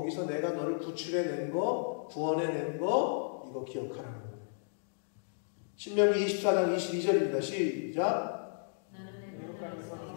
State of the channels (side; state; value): right; silent; digital silence